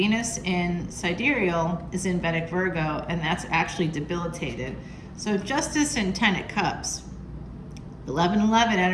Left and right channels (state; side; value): identical; both; correlation 1.00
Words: in sidereal is in Vedic Virgo, and that's actually debilitated. So Justice and 10 of Cups. 11/11